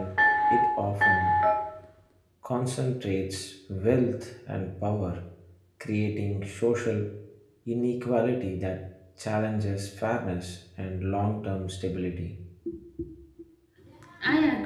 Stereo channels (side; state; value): both; identical; correlation 1.00